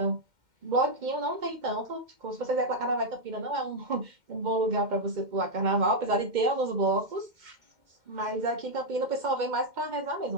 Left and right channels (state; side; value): late; left; 2.1 ms